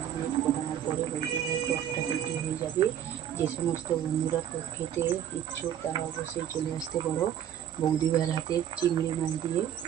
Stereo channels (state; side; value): quieter; left; 10.4 dB